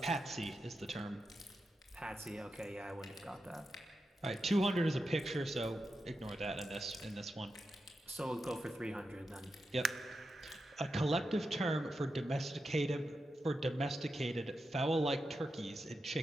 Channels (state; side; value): normal; both; correlation 0.89